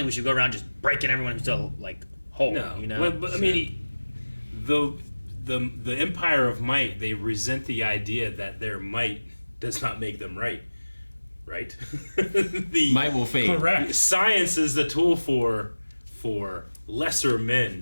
we should go around just breaking everyone who's still, like, whole, No. you know? But I mean, the Empire of Might, they resent the idea that their might does not make them right. right? Might will fade. Correct. Science is the tool for lesser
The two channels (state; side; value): inverted; both; correlation -1.00